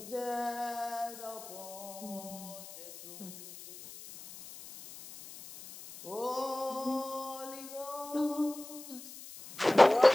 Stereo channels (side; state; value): left; noise; hiss, 15 dB below the sound